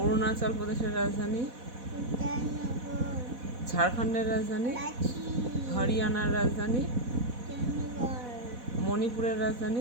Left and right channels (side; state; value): left; late; 4.1 ms